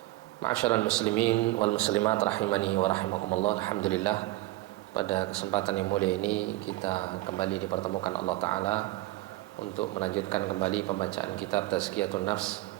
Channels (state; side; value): quieter; left; 18.4 dB